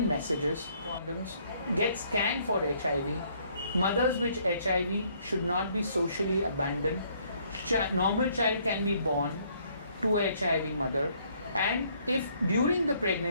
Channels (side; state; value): both; inverted; correlation -0.65